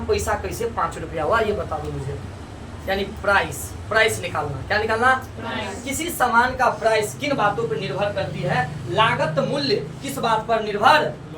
पैसा कैसे 5 रुपया हुआ, ये बता दो मुझे। यानी प्राइस निकालना, क्या निकालना? किसी सामान का प्राइस किन बातों पर निर्भर करती है? लागत मूल्य किस बात पर निर्भर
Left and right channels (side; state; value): both; identical; correlation 1.00